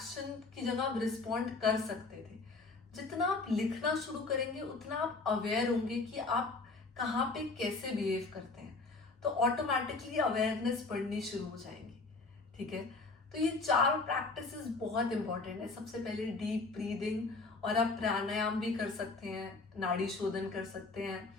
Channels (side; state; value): right; quieter; 3.7 dB